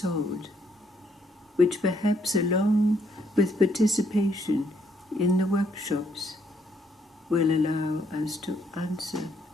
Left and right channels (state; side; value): normal; both; correlation 0.71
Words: which perhaps, along with participation in the workshops, will allow us to answer